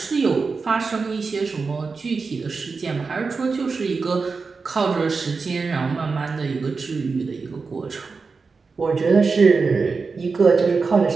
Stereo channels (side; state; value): left; quieter; 4.6 dB